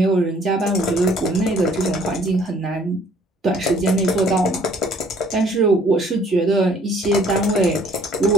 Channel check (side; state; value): both; normal; correlation 0.59